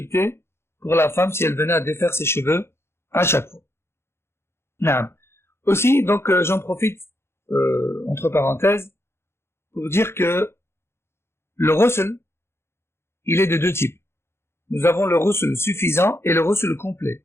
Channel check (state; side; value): late; right; 0.12 ms